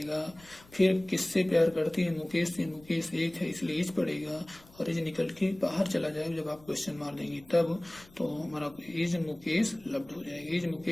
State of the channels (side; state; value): left; noise; rumble, 24 dB below the sound